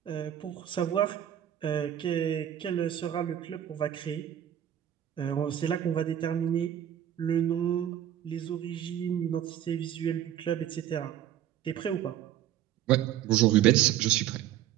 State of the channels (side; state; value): left; quieter; 11.0 dB